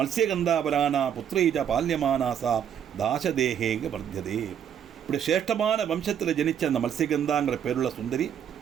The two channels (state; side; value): quieter; left; 8.8 dB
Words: வரானா புத்திரீஜா பால்யமானாசா தாசதேகேக வர்த்தியதே. இப்படி சிரேஷ்டமான வம்சத்தில் ஜனிச்ச அந்த மத்ஸ்யகந்தாங்கிற பேருள்ள சுந்தரி